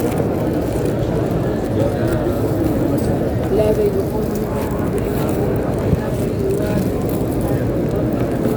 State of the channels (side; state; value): both; identical; correlation 1.00